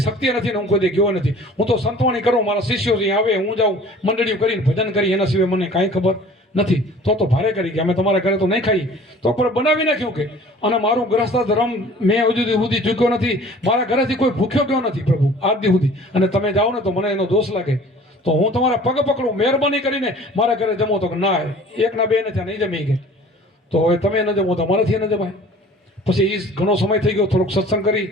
નથી ને હું કોઈ ગયો નથી. હું તો સંતવાણી કરું, મારા શિષ્યો અહીં આવે, હું જાઉં મંડળીઓ કરીને ભજન કરી, એના સિવાય મને કાંઈ ખબર નથી. તો ભારે કરી કે અમે તમારા ઘરે તો નહીં ખાઈ. તો પણ બનાવી નાખ્યું કે અને મારું ગ્રસ્ત ધર્મ મેં હજુ સુધી ચૂક્યો નથી. મારા ઘરેથી કોઈ ભૂખ્યો ગયો નથી પ્રભુ આજ દી સુધી. અને તમે જાઓ ને તો મને એનો દોષ લાગે તો હું તમારા પગ પકડું, મહેરબાની કરીને મારા ઘરે જમો. તો ના, 1 ના 2 ને ત્યાં નહીં જમી ગયા. તો હવે તમે ન જમો તો અમારાથી ન જમાય. પછી એ ઘણો સમય થઈ ગયો, થોડોક સત્સંગ કરી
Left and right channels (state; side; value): normal; both; correlation 0.47